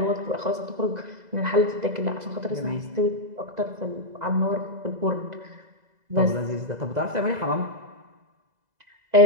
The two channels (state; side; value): late; left; 2.0 ms